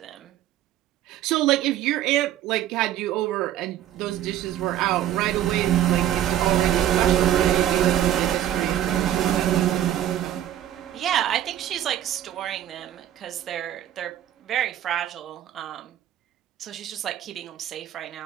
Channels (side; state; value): left; quieter; 11.9 dB